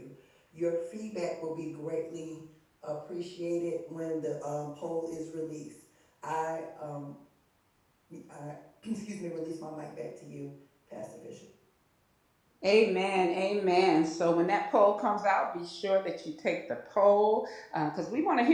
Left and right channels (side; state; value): both; identical; correlation 1.00